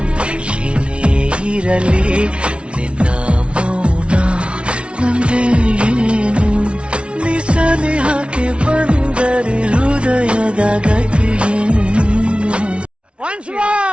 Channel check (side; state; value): left; late; 0.059 ms